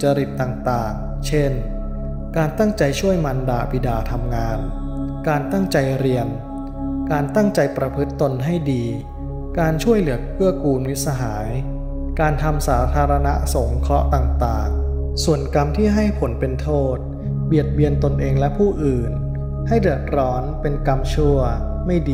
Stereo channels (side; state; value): both; identical; correlation 1.00